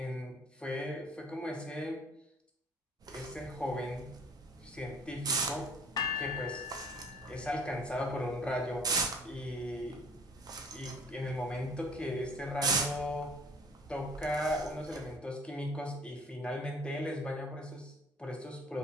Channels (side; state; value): both; normal; correlation 0.52